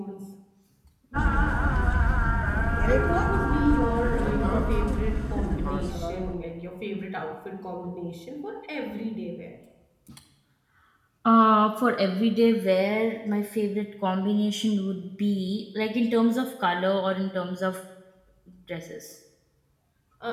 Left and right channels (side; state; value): both; identical; correlation 1.00